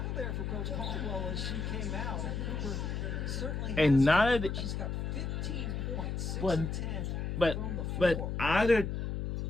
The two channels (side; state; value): left; noise; hum, 2 dB below the sound